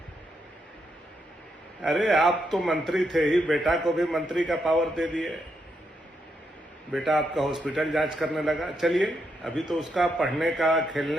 अरे आप तो मंत्री थे ही, बेटा को भी मंत्री का पावर दे दिए। बेटा आपका हॉस्पिटल जांच करने लगा। चलिए, अभी तो उसका पढ़ने का,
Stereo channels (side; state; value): both; normal; correlation 0.80